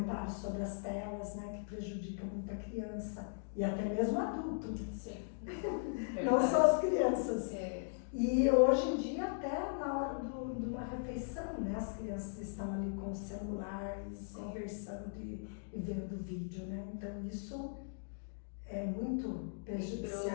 sobre as telas, né? Que prejudicam muito a criança e até mesmo o adulto. Sim. Não só as crianças. É. E hoje em dia, até na hora de uma refeição, né? As crianças estão ali com o celular, conversando e vendo vídeo, né? Então isso é muito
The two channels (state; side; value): silent; right; digital silence